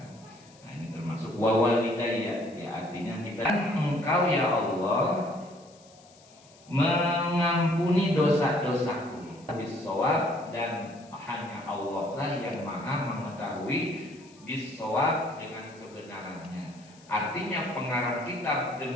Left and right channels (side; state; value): left; noise; hiss, 26 dB below the sound